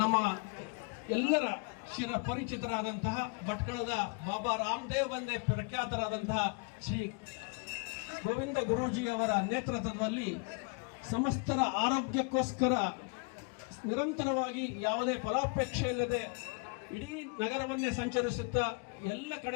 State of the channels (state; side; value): quieter; right; 35.2 dB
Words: ಎಲ್ಲರ ಶಿರ ಪರಿಚಿತರಾದಂತಹ ಭಟ್ಕಳದ ಬಾಬಾ ರಾಮದೇವ್ ಬಂದೇ ಪ್ರಖ್ಯಾತರಾದಂತಹ ಶ್ರೀ ಗೋವಿಂದ ಗುರೂಜಿಯವರ ನೇತೃತ್ವದಲ್ಲಿ ಸಮಸ್ತರ ಆರೋಗ್ಯಕ್ಕೋಸ್ಕರ ನಿರಂತರವಾಗಿ ಯಾವುದೇ ಫಲಾಪೇಕ್ಷೆ ಇಲ್ಲದೆ ಇಡೀ ನಗರವನ್ನೇ ಸಂಚರಿಸುತ್ತಾ ಎಲ್ಲ